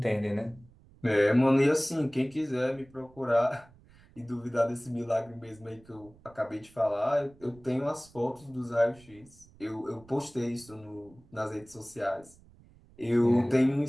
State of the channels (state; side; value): noise; right; rumble, 26 dB below the sound